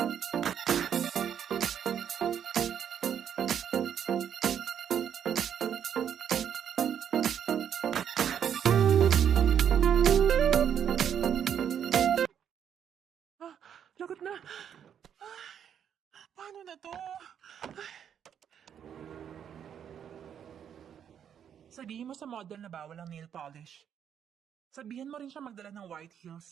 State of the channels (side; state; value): left; quieter; 8.7 dB